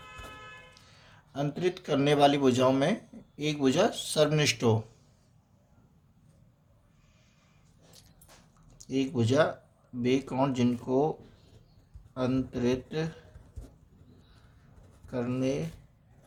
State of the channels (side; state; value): both; identical; correlation 1.00